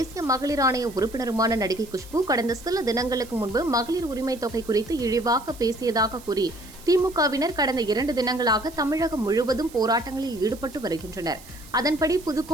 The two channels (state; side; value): noise; right; hiss, 20 dB below the sound